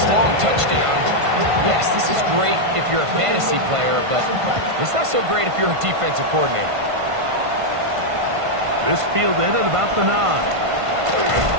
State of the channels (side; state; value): left; late; 1.5 ms